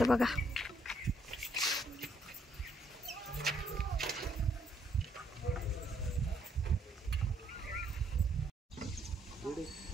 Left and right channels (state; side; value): normal; both; correlation 0.71